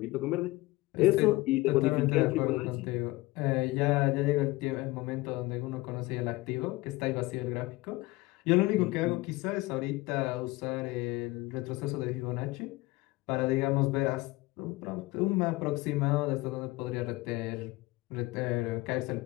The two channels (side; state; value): right; quieter; 20.6 dB